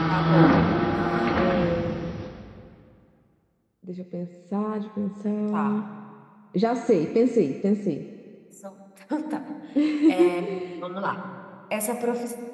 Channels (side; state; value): both; identical; correlation 1.00